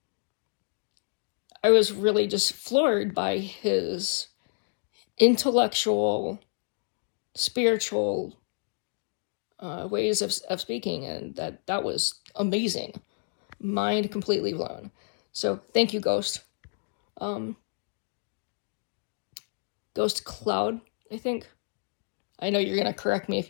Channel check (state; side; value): silent; right; digital silence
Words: was really just floored by his intellectual, spiritual ways of speaking, and that was amazing. Mind completely blown. So thank you, Ghost. Um, Ghost Cloud, I think. I know you're gonna correct me if